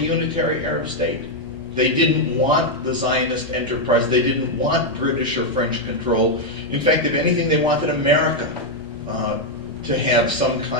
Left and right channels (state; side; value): normal; both; correlation 0.00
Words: unitary Arab state. They didn't want the Zionist enterprise. They didn't want British or French control. In fact, if anything, they wanted America to have some